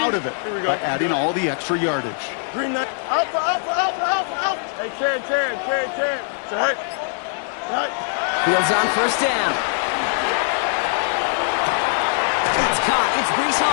out of it by adding all the extra yardage. Green knight. Alpha, alpha, alpha, alpha, alpha. Hey, Ken. Sit high. Sit high. Fields on first down. It's caught. It's Breece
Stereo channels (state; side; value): silent; right; 64 dB below the other